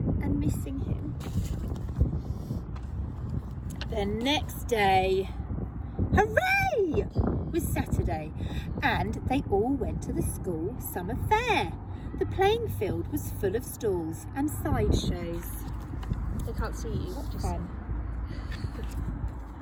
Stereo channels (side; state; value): both; identical; correlation 1.00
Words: and missing him. The next day, hooray! Was Saturday, and they all went to the school summer fair. The playing field was full of stalls and sideshows. They can't see you. Just Fun.